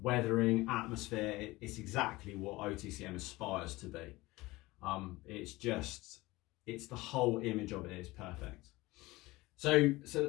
atmosphere. It's exactly what OTCM aspires to be. It's the whole image of it is perfect. So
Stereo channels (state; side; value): quieter; right; 20.3 dB